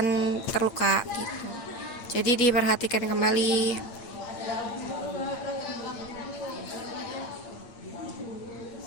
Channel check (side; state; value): right; late; 8.8 ms